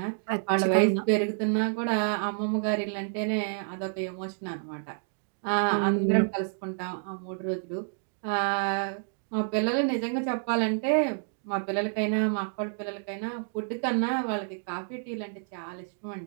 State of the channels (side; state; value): left; silent; digital silence